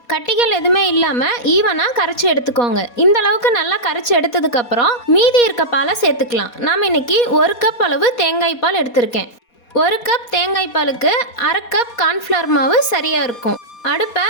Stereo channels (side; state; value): right; late; 4.2 ms